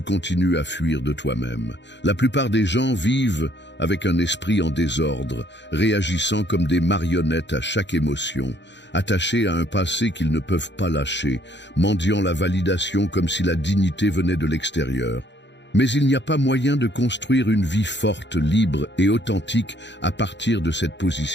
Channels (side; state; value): right; late; 0.52 ms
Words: continues à fuir de toi-même. La plupart des gens vivent avec un esprit en désordre, réagissant comme des marionnettes à chaque émotion, attachés à un passé qu'ils ne peuvent pas lâcher, mendiant la validation comme si la dignité venait de l'extérieur. Mais il n'y a pas moyen de construire une vie forte, libre et authentique à partir de cette